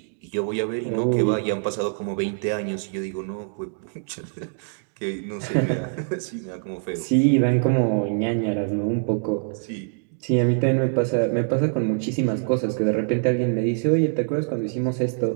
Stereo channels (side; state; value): left; silent; digital silence